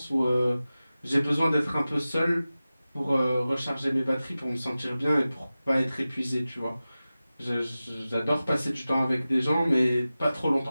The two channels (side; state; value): both; inverted; correlation -0.96